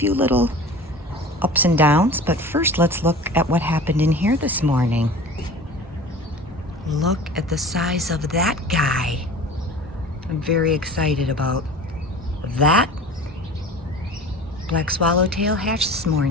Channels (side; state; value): both; normal; correlation 0.39